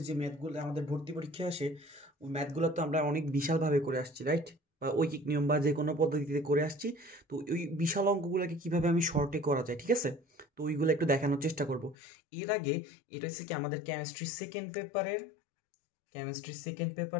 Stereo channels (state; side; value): drops out; right; at 12.0 s